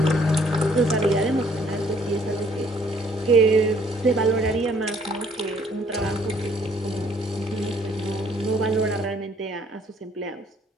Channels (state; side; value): normal; both; correlation 0.63